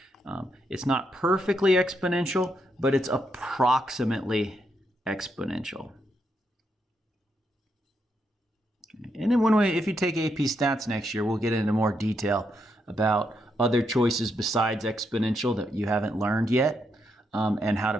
it's not perfectly exponential, but it's approximately exponential. And then if you take AP Stats next year, we'll get into more detail about other choices besides exponential that you haven't learned yet, and how to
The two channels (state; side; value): normal; both; correlation 0.80